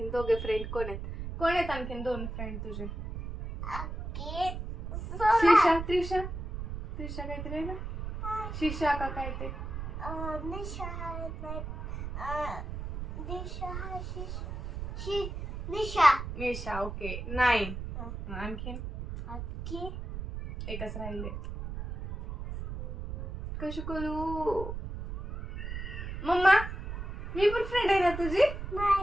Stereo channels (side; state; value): right; noise; rumble, 7 dB below the sound